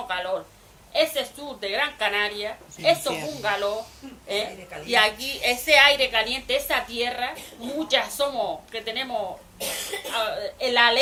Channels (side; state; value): both; identical; correlation 1.00